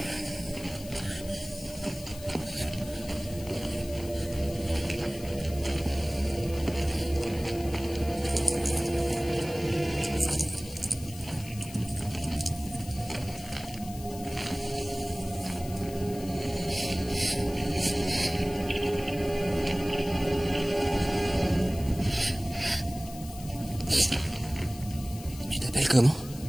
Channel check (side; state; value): left; noise; hiss, 16 dB below the sound